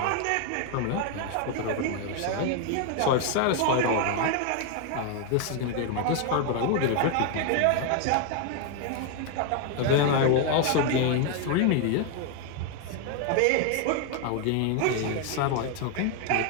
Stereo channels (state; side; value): different; both; correlation 0.01